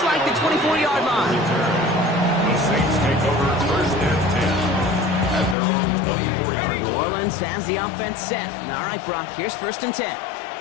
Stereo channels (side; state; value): right; drops out; at 5.6 s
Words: like the 24-yard line. The Saints take over 1st and 10 at their own 24-yard line. New Orleans has the offense set. All right, Brock, here's 1st and 10.